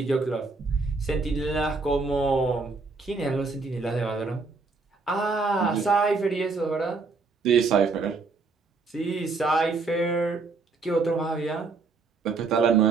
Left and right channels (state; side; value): quieter; left; 4.1 dB